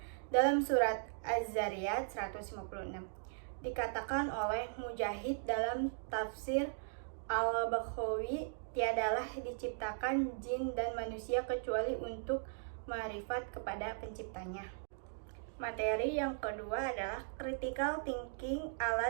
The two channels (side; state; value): left; silent; digital silence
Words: Dalam surat Az-Zariyat 156 dikatakan oleh Mujahid dalam tafsir Al-Baghawi, tiadalah diciptakan jin dan manusia kecuali untuk ma'rifat kepada penciptanya. Materi yang kedua adalah critical thinking,